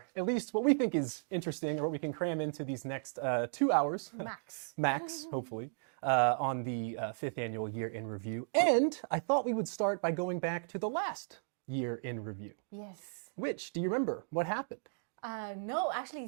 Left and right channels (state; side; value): silent; left; digital silence